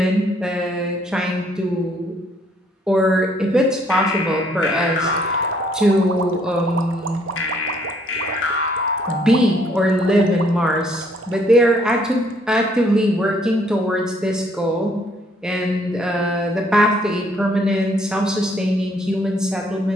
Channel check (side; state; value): both; normal; correlation 0.65